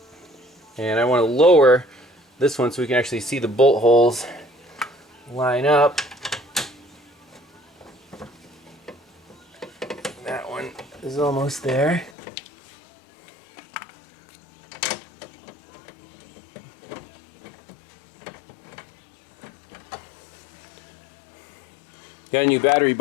and I want to lower this one so we can actually see the bolt holes line up. That one is almost there. Got a new battery,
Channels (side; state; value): right; drops out; at 12.1 s